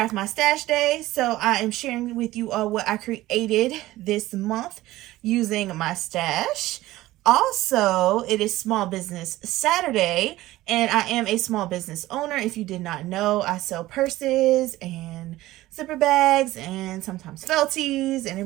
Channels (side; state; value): left; quieter; 16.8 dB